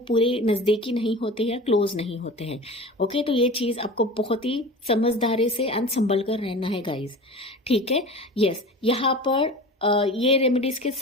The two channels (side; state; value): both; normal; correlation 0.35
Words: पूरे नजदीकी नहीं होते या क्लोज नहीं होते हैं। ओके। तो ये चीज आपको बहुत ही समझदारी से एंड संभल कर रहना है गाइज। ठीक है। यस। यहाँ पर ये रेमेडीज के